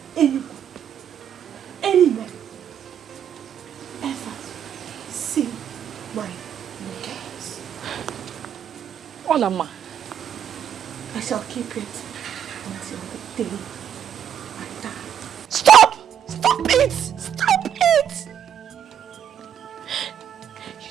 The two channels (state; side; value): quieter; left; 9.1 dB